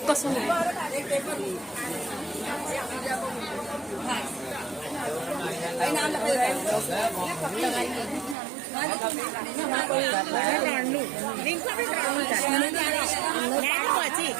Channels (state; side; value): drops out; left; at 8.3 s